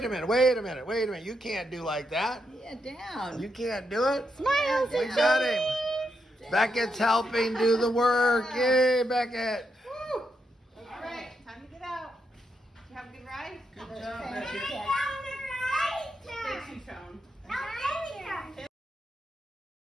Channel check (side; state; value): both; normal; correlation 0.82